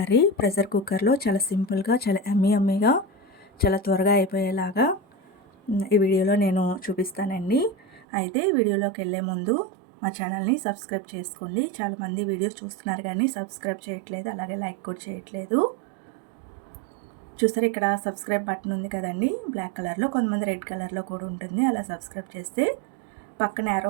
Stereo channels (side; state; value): left; drops out; at 8.1 s